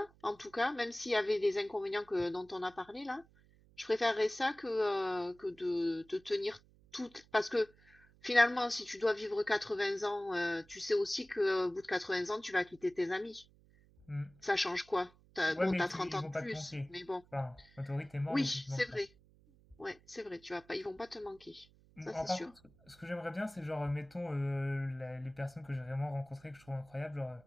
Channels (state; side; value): noise; right; hum, 28 dB below the sound